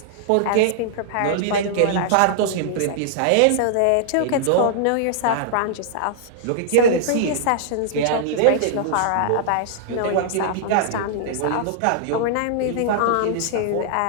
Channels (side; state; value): both; different; correlation -0.01